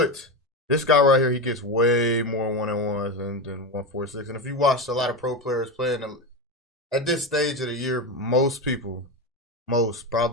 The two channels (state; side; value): normal; both; correlation 0.17